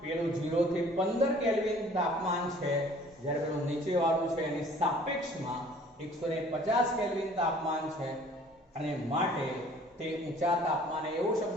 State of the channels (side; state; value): both; normal; correlation 0.52